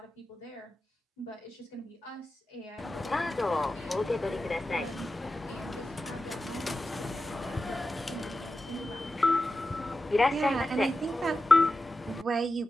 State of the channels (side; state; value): both; normal; correlation 0.92